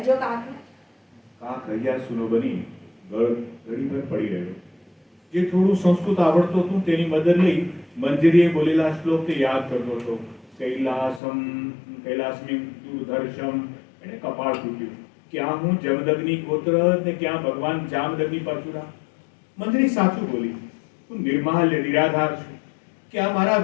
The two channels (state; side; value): drops out; right; at 11.2 s